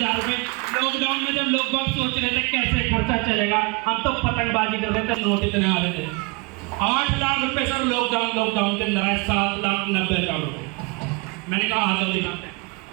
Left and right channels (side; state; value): left; quieter; 28.1 dB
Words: रुपए। लॉकडाउन में जब लोग बहुत सोच रहे थे कैसे खर्चा चलेगा, हम तो पतंगबाजी कर रहे थे, नोट इतने आ रहे थे। 8 लाख रुपए सर लॉकडाउन के अंदर आए, 7,90,000 रुपए। मैंने कहा आ जाओ दिखाते हैं।